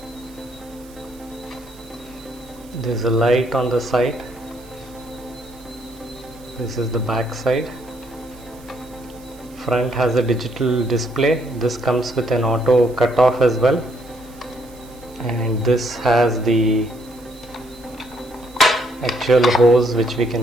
There's a light on the side. This is the back side. Front has a digital display. This comes with an auto cutoff as well, and this has the actual hose which we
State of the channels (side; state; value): right; noise; hiss, 25 dB below the sound